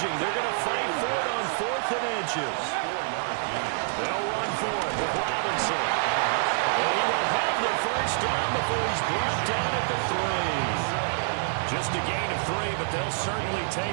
They're going to fight for it on 4th and inches. They'll run for it with Robinson. And he will have the 1st down before he's brought down at the 3. Just a gain of 3, but they'll certainly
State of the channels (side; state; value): left; silent; 60 dB below the other